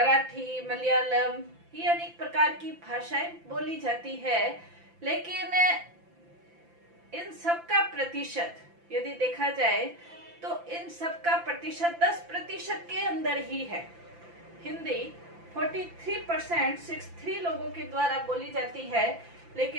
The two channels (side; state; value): left; late; 5.9 ms